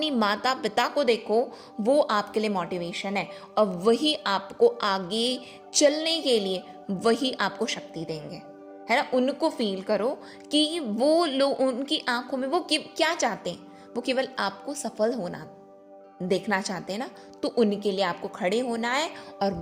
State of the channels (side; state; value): both; identical; correlation 1.00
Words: माता पिता को देखो, वो आपके लिए मोटिवेशन है, और वही आपको आगे चलने के लिए वही आपको शक्ति देंगे, है ना। उनको फील करो कि वो लोग, उनकी आंखों में वो क्या चाहते हैं, वो केवल आपको सफल होना देखना चाहते हैं ना। तो उनके लिए आपको खड़े होना है और